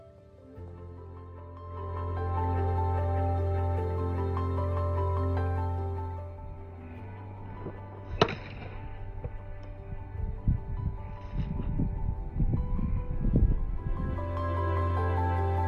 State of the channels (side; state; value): both; identical; correlation 1.00